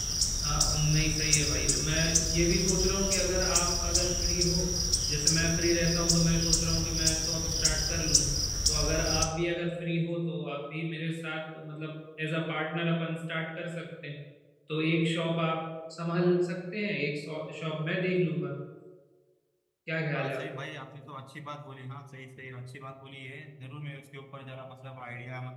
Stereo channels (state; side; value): identical; both; correlation 1.00